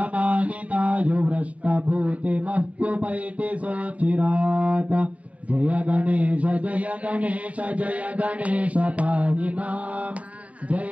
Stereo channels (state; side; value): late; left; 0.067 ms